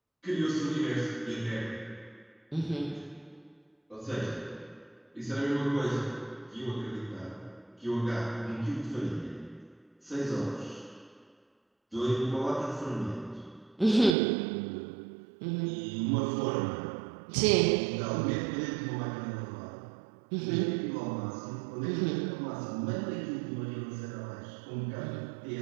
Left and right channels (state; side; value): drops out; left; at 14.2 s